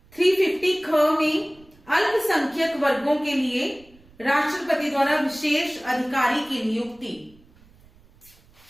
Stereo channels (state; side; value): noise; right; rumble, 28 dB below the sound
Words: 350 ख में अल्पसंख्यक वर्गों के लिए राष्ट्रपति द्वारा विशेष अधिकारी की नियुक्ति।